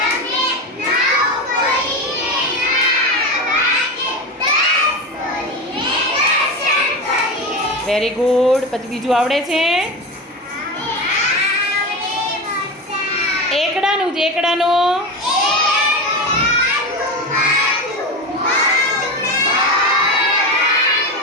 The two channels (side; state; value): both; normal; correlation 0.22